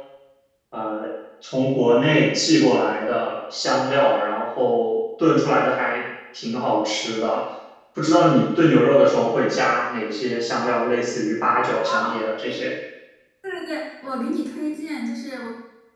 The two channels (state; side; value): identical; both; correlation 1.00